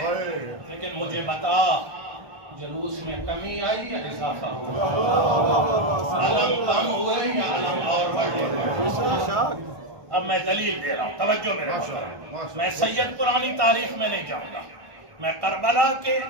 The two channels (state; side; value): late; left; 1.1 ms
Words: لیکن مجھے بتا جلوس میں کمی آئی یا اضافہ ہوا؟ علم کم ہوئے یا علم اور بڑھے؟ اب میں دلیل دے رہا ہوں، توجہ میرے محترم، میں سید پرانی تاریخ میں نہیں جاؤں گا، میں کربلا کے